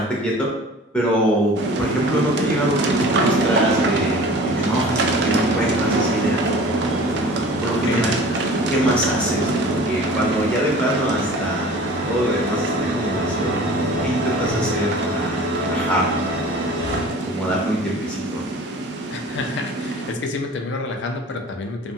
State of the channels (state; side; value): normal; both; correlation 0.43